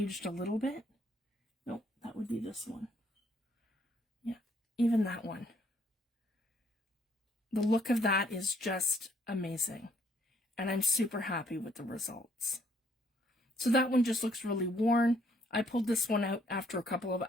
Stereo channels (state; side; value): normal; both; correlation 0.66